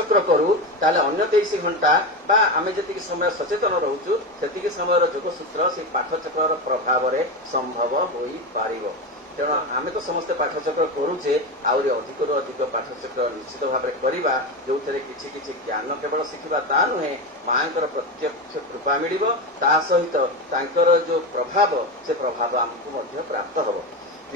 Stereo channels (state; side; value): normal; both; correlation 0.18